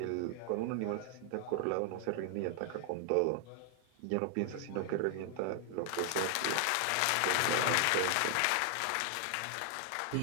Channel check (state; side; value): different; both; correlation 0.00